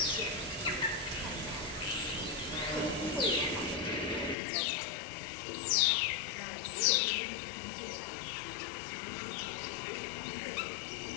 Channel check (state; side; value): drops out; right; at 4.4 s